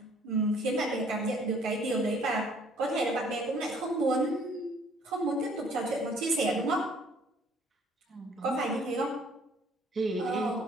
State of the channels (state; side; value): normal; both; correlation 0.59